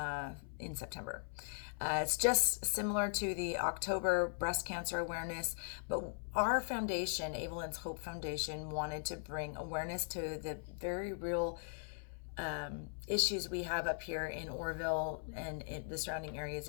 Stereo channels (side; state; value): right; silent; 52 dB below the other